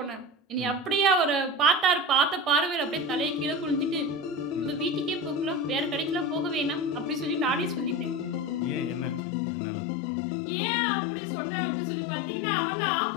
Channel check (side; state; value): right; drops out; at 9.2 s